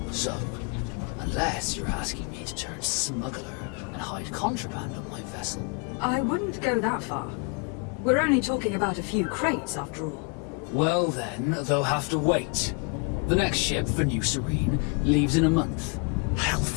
So, unless you're asking me turned smuggler and hide contraband on my vessel. I wouldn't go that far. We're only talking about a few crates, after all. Well then, they'll have to wait. The next ship for New Serene leaves in a month.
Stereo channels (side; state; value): right; quieter; 32.3 dB